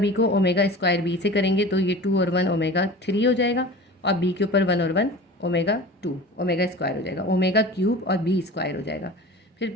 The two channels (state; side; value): normal; both; correlation 0.37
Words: को ओमेगा स्क्वायर बी से करेंगे तो ये 2 और 1 ओमेगा 3 हो जाएगा और बी के ऊपर 1 और 1 ओमेगा 2 ओमेगा स्क्वायर हो जाएगा, ओमेगा क्यूब और बी स्क्वायर हो जाएगा। फिर